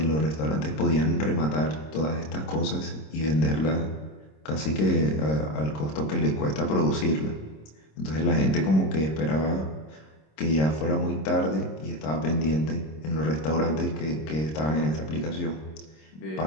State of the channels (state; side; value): late; right; 26 ms